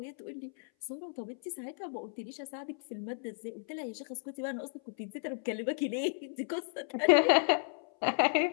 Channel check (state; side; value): silent; right; 55 dB below the other